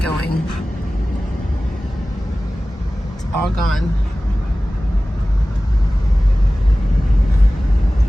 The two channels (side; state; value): both; normal; correlation 0.97